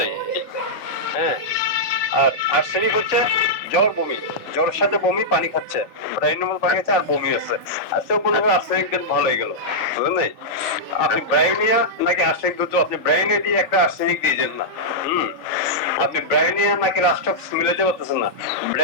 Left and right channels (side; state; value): right; late; 3.4 ms